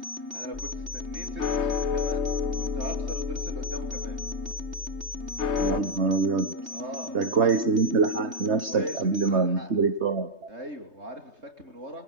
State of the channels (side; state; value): left; late; 3.2 ms